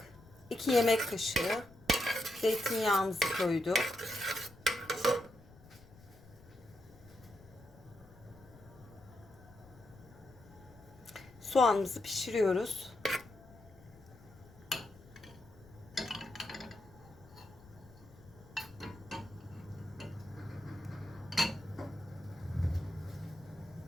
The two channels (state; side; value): noise; left; rumble, 22 dB below the sound